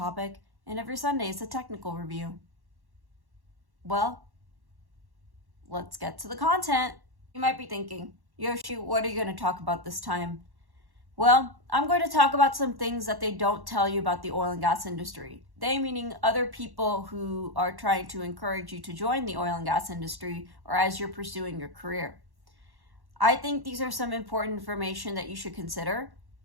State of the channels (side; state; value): left; late; 1.1 ms